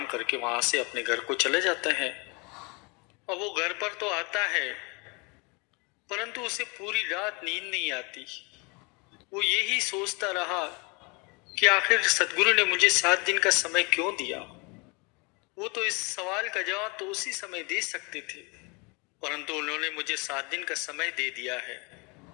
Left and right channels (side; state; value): right; quieter; 29.8 dB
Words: करके वहां से अपने घर को चले जाते हैं। और वो घर पर तो आता है, परंतु उसे पूरी रात नींद नहीं आती। वो यही सोचता रहा कि आखिर सदगुरु ने मुझे 7 दिन का समय क्यों दिया। वो तो इस सवाल का जवाब तो उसी समय दे सकते थे, परंतु उन्होंने मुझे 7 दिन का समय दे दिया है।